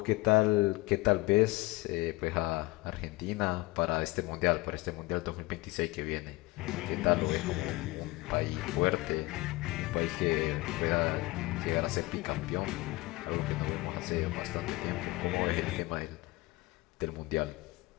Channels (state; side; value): quieter; right; 21.8 dB